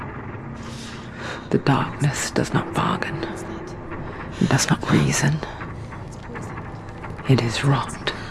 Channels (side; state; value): both; identical; correlation 1.00